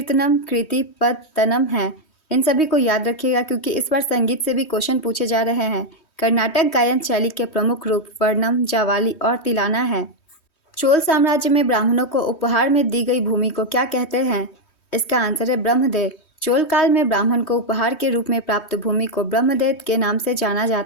कृति, पद, तनम हैं। इन सभी को याद रखिएगा, क्योंकि इस बार संगीत से भी क्वेश्चन पूछे जा रहे हैं। कर्नाटक गायन शैली के प्रमुख रूप वर्णम, जावाली और तिलाना है। चोल साम्राज्य में ब्राह्मणों को उपहार में दी गई भूमि को क्या कहते हैं? इसका आंसर है ब्रह्मदेव। चोल काल में ब्राह्मण को उपहार के रूप में प्राप्त भूमि को ब्रह्मदेव के नाम से जाना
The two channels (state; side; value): late; right; 3.2 ms